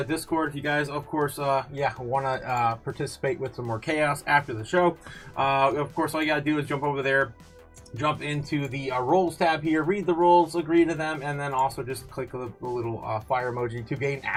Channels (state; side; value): identical; both; correlation 1.00